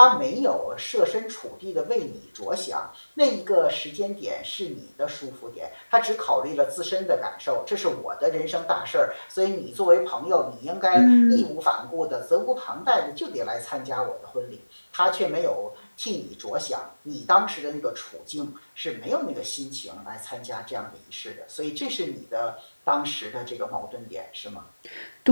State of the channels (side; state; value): both; inverted; correlation -1.00